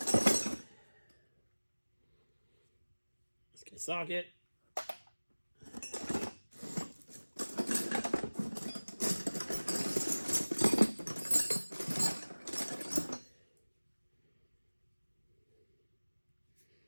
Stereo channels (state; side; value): inverted; both; correlation -1.00